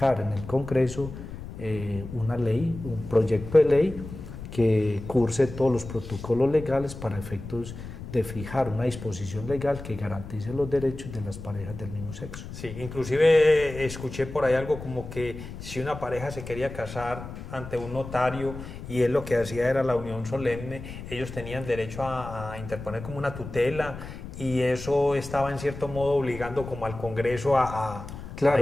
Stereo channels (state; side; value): noise; left; rumble, 11 dB below the sound